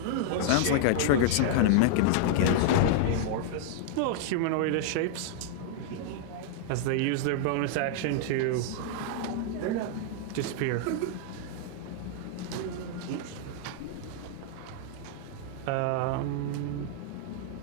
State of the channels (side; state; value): both; different; correlation -0.01